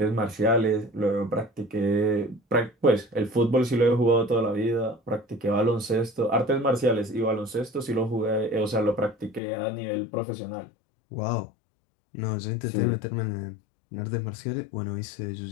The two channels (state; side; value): drops out; right; at 9.4 s